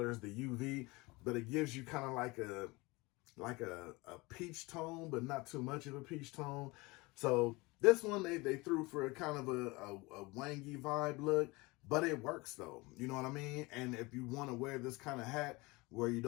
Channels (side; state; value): right; quieter; 23.8 dB